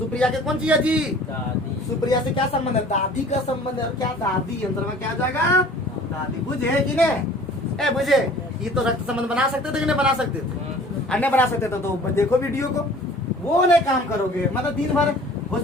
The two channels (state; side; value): normal; both; correlation 0.48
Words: के कौन सी है जी? दादी। सुप्रिया से क्या संबंध है? दादी का संबंध है। क्या दादी अंतर में क्या जाएगा? दादी। बुझे कि नहीं? ए बुझे, ये तो रक्त संबंध बना सकते थे कि नहीं बना सकते थे? अन्य बना सकते थे। तो देखो वीडियो को, वो नहीं काम करोगे, मतलब दिन भर